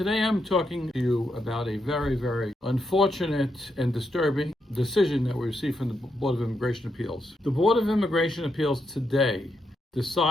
I'm talking to you about a very unfortunate and disturbing decision that we received from the Board of Immigration Appeals. The Board of Immigration Appeals today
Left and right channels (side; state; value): both; normal; correlation 0.82